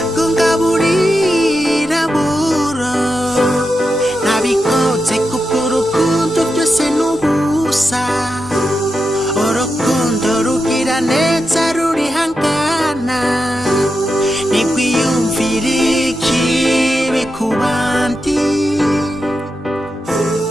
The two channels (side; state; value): both; normal; correlation 0.88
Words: ngo ngaburira buro nabikoze kubw'urukundo byose n'ubusa urukundo rugira neza rurihangana ntikwiyumvira ikibi ku bandi